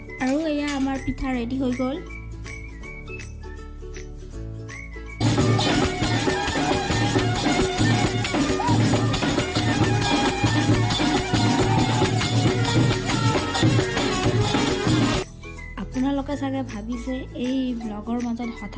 আৰু এয়া আমাৰ পিঠা ৰেডি হৈ গ'ল। আপোনালোকে চাগে ভাবিছে এই ব্লগৰ মাজত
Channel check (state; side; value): identical; both; correlation 1.00